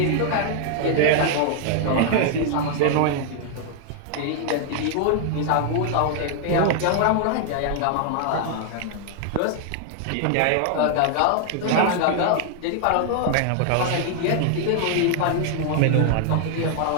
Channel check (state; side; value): different; both; correlation 0.00